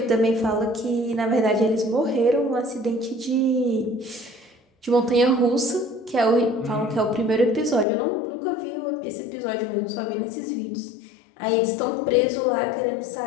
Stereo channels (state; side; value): drops out; right; at 7.9 s